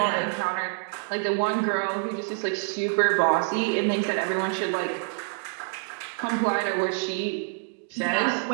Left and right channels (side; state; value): left; silent; digital silence